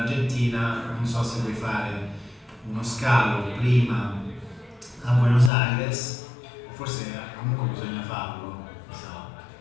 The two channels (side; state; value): right; drops out; at 5.5 s